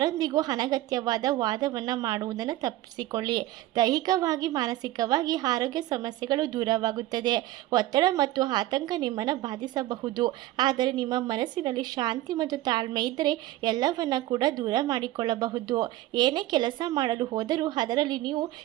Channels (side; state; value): left; quieter; 15.7 dB